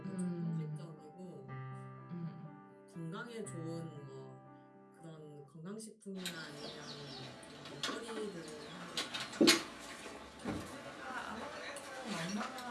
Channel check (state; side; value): identical; both; correlation 1.00